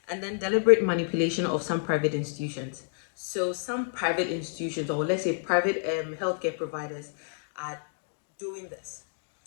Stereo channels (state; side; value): silent; right; digital silence